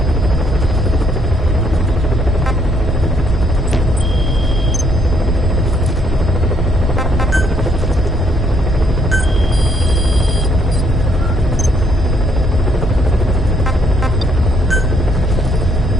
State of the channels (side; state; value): both; normal; correlation 0.70